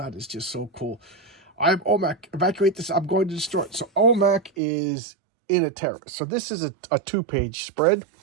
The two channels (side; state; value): left; drops out; at 4.5 s